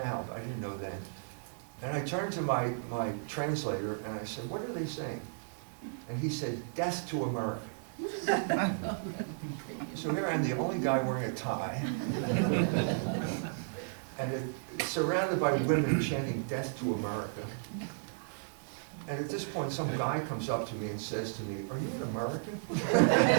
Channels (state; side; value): silent; left; 55 dB below the other